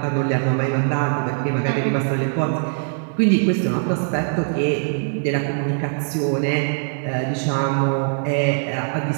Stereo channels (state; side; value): silent; left; digital silence